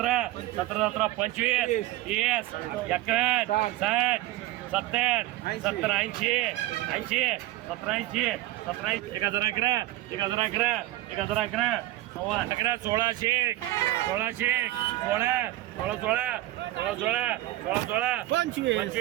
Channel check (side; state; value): left; quieter; 16.5 dB